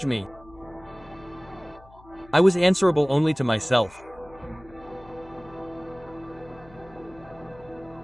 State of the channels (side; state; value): left; noise; hum, 24 dB below the sound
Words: me? I was answerable only to myself.